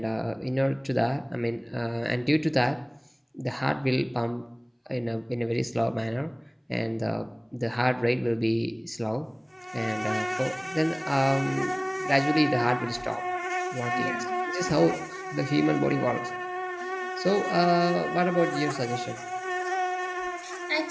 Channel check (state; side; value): identical; both; correlation 1.00